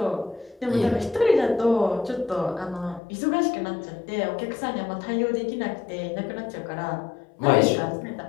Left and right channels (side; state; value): right; drops out; at 3.0 s